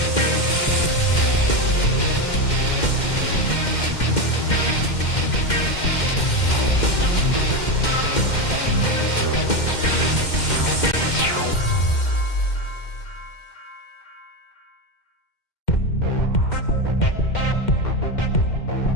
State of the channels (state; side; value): late; right; 2.1 ms